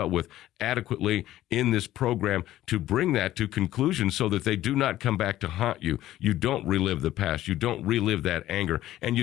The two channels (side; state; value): right; quieter; 14.1 dB